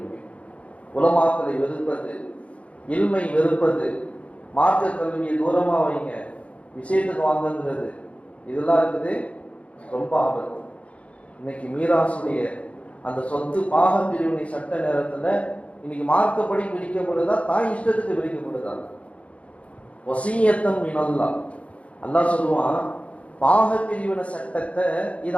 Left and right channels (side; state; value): right; late; 0.063 ms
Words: உலமாக்களை வெறுப்பது, இல்மை வெறுப்பது, மார்க்க கல்வியை தூரமா வைங்க, விஷயத்துக்கு வாங்குங்கிறது, இதெல்லாம் இருக்குது ரொம்ப ஆபத்து. இன்னைக்கு மீராசுடைய அந்த சொத்து பாக பிரிவினை சட்ட நேரத்துல இன்னைக்கு மார்க்கப்படி பிரிக்கப்படுதா, தாய் இஷ்டத்துக்கு பிரிக்கப்படுதா? வசியத்தம் மினல்லாஹ், அல்லாஹ் சொல்லுவான், பாக பிரிவினை சட்டத்தை இதை